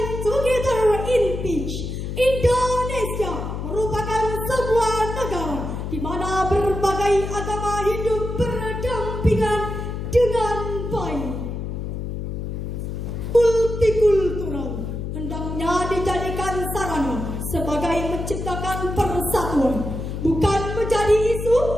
together in peace. Indonesia merupakan sebuah negara di mana berbagai agama hidup berdampingan dengan baik. Multikultural hendaknya dijadikan sarana sebagai menciptakan persatuan, bukan menjadi isu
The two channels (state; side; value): noise; left; hum, 5 dB below the sound